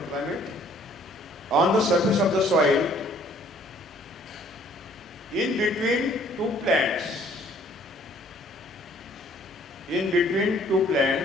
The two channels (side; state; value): both; normal; correlation 0.59